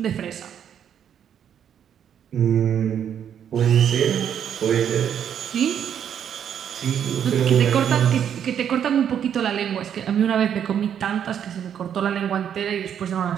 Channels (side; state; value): left; quieter; 8.9 dB